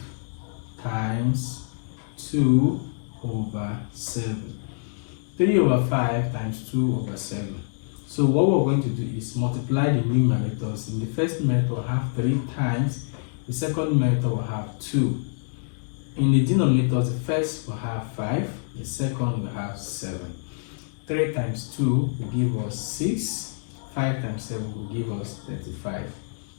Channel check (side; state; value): right; silent; digital silence